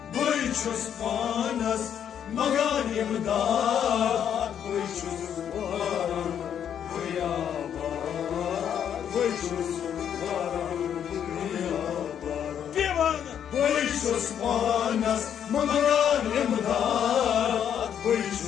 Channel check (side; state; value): right; quieter; 9.0 dB